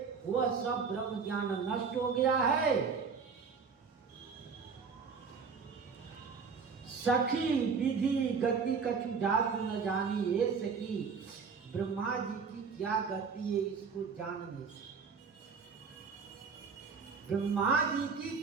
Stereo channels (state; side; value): quieter; left; 5.6 dB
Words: वह सब ब्रह्म ज्ञान नष्ट हो गया है। सखी विधि गति कछु जात न जानी, ये सखी ब्रह्मा जी की क्या गति है इसको जान नहीं सकते। ब्रह्मा जी की